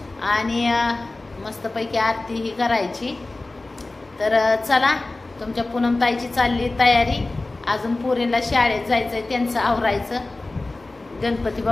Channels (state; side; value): quieter; right; 3.1 dB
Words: आणि मस्तपैकी आरती ही करायची। तर चला, तुमच्या पूनमताईची चालली तयारी। अजून पोरींना शाळेत जायचंय, त्यांचं आवरायचं। गणपती